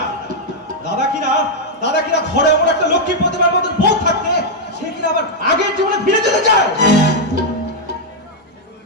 দাদা কিনা ঘরে এমন একটা লক্ষ্মী প্রতিমার মতন বউ থাকতে সে কিনা আবার আগের জীবনে ফিরে যেতে চায়।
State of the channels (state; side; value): normal; both; correlation -0.02